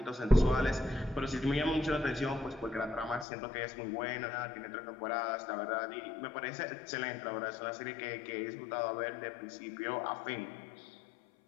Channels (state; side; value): drops out; right; at 3.2 s